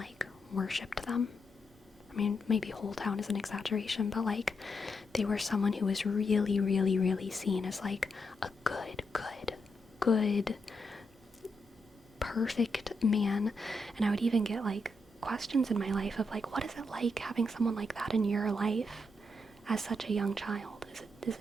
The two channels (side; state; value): both; normal; correlation 0.82